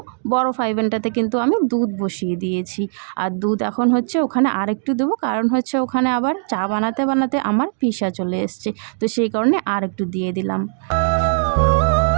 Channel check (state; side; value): silent; left; digital silence